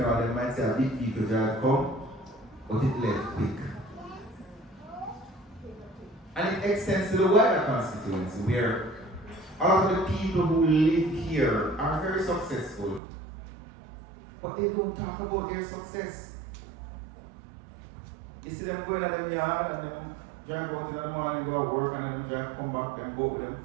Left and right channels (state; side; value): drops out; left; at 13.0 s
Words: they might say a big vehicle drive come, but it left quick. And it extends to the wider constituency where a lot of the people who live here are very successful, but they don't talk about their success. You see them going to them yard and them drive out in the morning, go to work, and then drive, come back and go with their